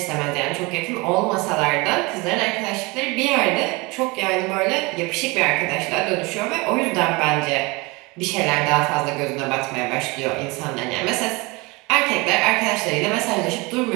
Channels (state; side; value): quieter; left; 25.5 dB